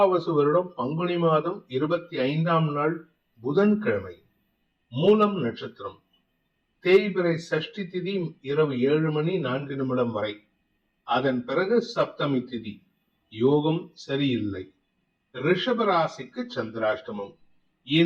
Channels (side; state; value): both; identical; correlation 1.00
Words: வருடம் பங்குனி மாதம் 25ஆம் நாள் புதன்கிழமை. மூலம் நட்சத்திரம். தேய்பிறை சஷ்டி திதி இரவு 7:04 வரை. அதன் பிறகு சப்தமி திதி. யோகம் சரியில்லை. ரிஷபராசிக்கு சந்திராஷ்டமம்.